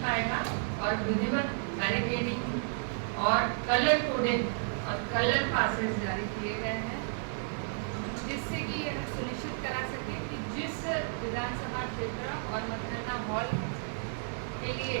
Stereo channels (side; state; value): left; silent; 56 dB below the other